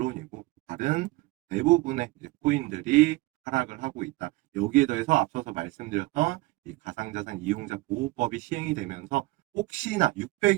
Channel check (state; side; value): quieter; left; 21.3 dB